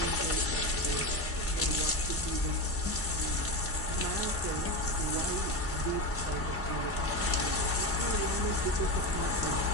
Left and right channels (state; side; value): normal; both; correlation 0.17